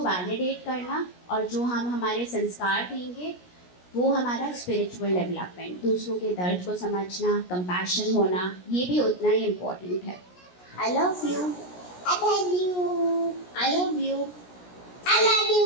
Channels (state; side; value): late; right; 17 ms